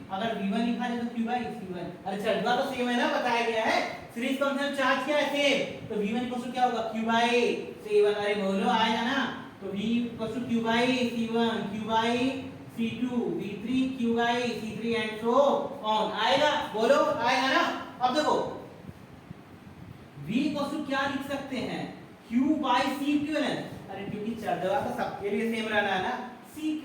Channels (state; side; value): identical; both; correlation 1.00